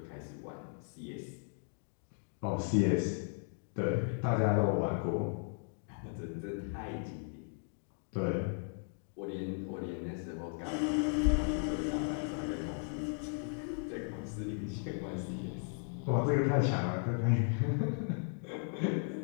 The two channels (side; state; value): right; silent; 54 dB below the other